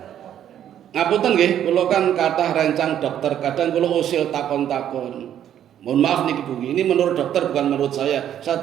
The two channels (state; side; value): quieter; left; 10.4 dB